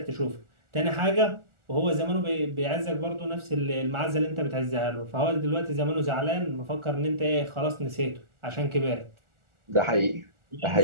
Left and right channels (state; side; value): late; left; 1.4 ms